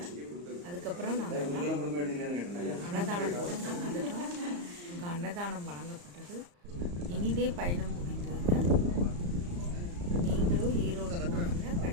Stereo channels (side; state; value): left; late; 34 ms